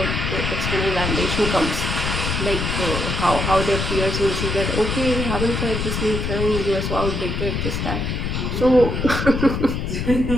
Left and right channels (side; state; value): left; noise; rumble, 2 dB below the sound